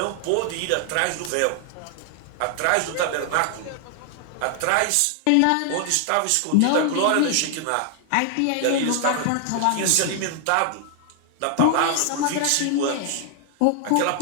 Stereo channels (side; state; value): both; different; correlation 0.00